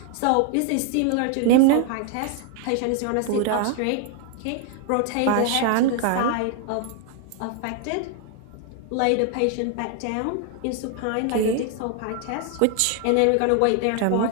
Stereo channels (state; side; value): different; both; correlation 0.00